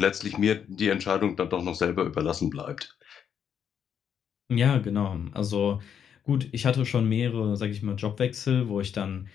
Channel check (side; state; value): right; quieter; 8.2 dB